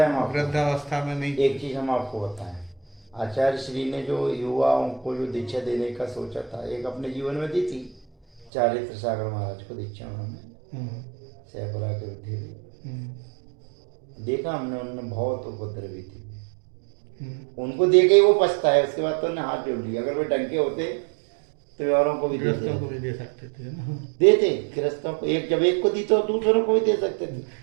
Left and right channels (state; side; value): drops out; left; at 8.5 s